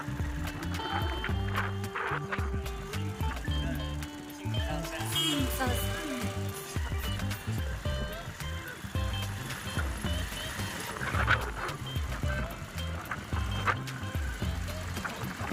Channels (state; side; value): identical; both; correlation 1.00